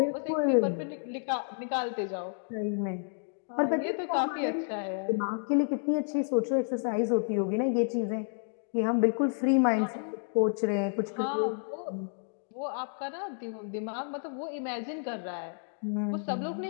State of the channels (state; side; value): silent; right; 57 dB below the other